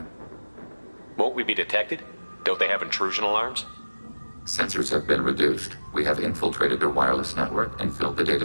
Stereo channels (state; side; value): inverted; both; correlation -1.00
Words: Won't we be detected? Don't they have intrusion alarms? Sensors have been reduced. We have infiltrated their wireless network and filled the